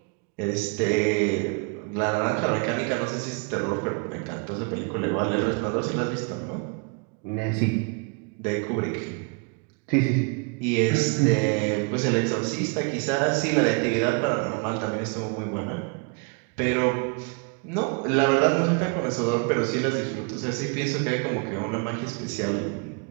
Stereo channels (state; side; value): quieter; left; 32.8 dB